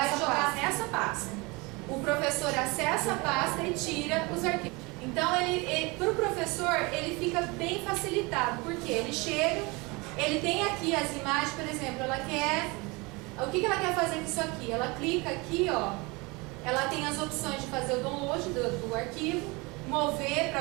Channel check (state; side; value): quieter; left; 26.1 dB